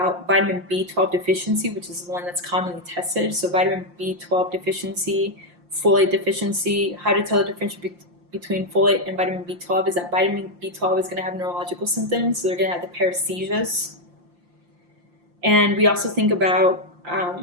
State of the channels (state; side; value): late; left; 5.7 ms